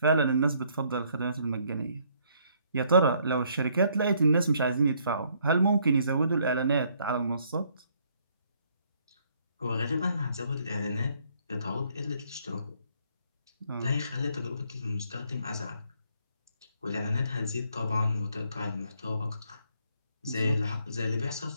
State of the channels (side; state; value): both; inverted; correlation -0.68